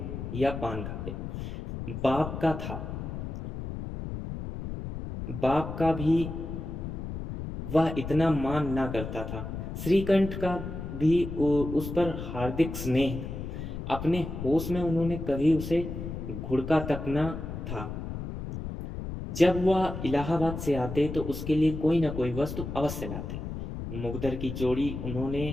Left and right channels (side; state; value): left; noise; rumble, 7 dB below the sound